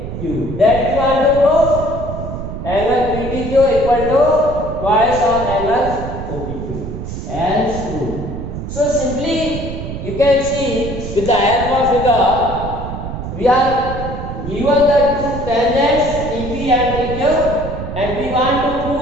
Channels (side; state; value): right; noise; rumble, 7 dB below the sound